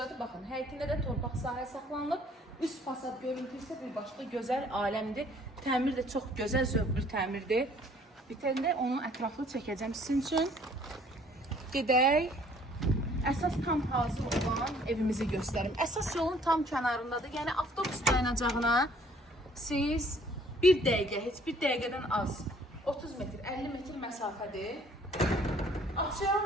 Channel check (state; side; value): normal; both; correlation 0.58